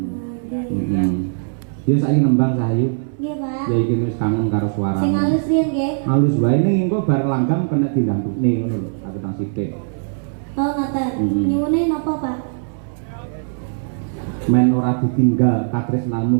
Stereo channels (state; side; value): silent; left; 61 dB below the other